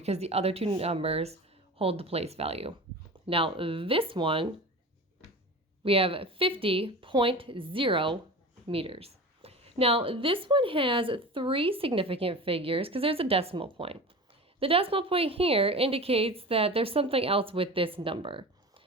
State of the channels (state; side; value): normal; both; correlation 0.33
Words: the other two numbers hold the place value. Now this one, we have 50.0 meters. Now, this one has 3 significant figures because there's a decimal point. The decimal point here indicates that there's something else with this number.